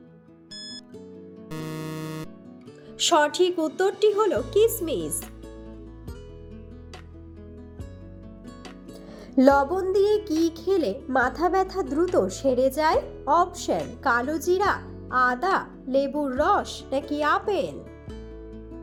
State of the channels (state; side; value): identical; both; correlation 1.00